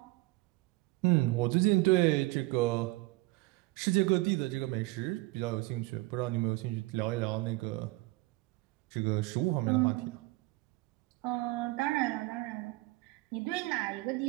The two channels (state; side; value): quieter; left; 21.0 dB